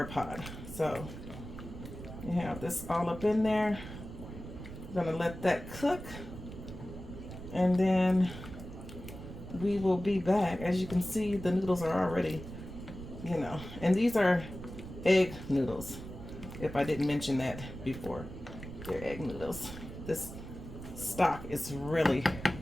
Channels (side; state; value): right; noise; rumble, 11 dB below the sound